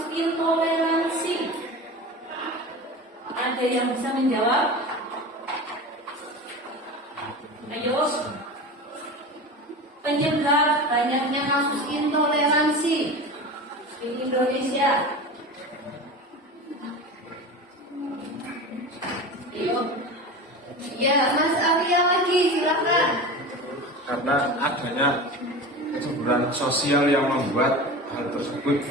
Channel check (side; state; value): both; normal; correlation 0.30